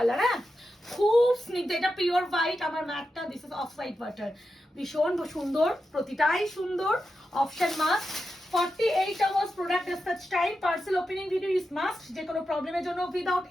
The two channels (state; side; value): normal; both; correlation 0.89